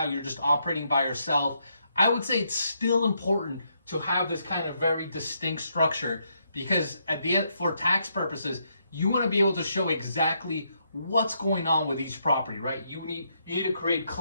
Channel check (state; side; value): inverted; both; correlation -0.77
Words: you're just operating by yourself. I would say it's still important to have this kind of very distinct structure, because at the end, for tax purposes, you want to be able to show exactly what's going on with each property, right? You need to create